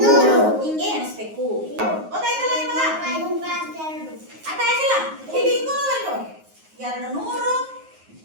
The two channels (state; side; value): late; left; 9.5 ms